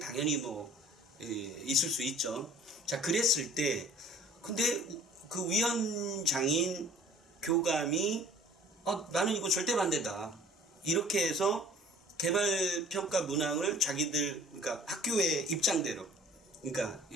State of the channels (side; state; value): both; normal; correlation 0.50